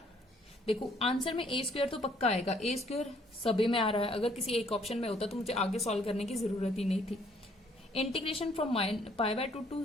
देखो आंसर में a स्क्वायर तो पक्का आएगा, a स्क्वायर सभी में आ रहा है। अगर किसी एक ऑप्शन में होता तो मुझे आगे सॉल्व करने की जरूरत ही नहीं थी। Integration from π/2 to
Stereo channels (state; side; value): normal; both; correlation 0.64